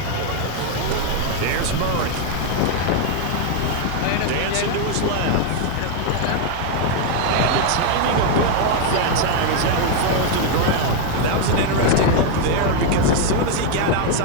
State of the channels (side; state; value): both; different; correlation 0.00